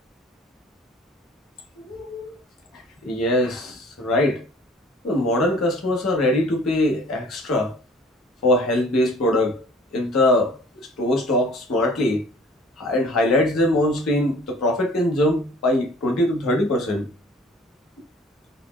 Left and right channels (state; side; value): normal; both; correlation 0.51